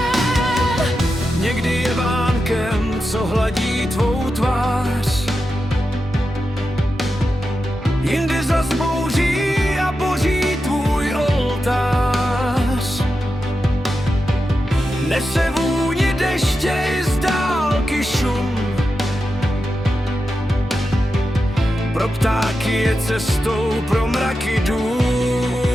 Někdy je vánkem, co hladí tvou tvář, jindy zas bouří a boří tvůj oltář. Nese vůni deště i z dálky šum, pro ptáky je cestou, pro mraky dům.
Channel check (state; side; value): normal; both; correlation 0.89